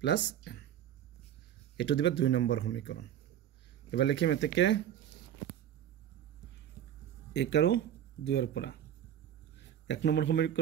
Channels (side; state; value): left; quieter; 10.4 dB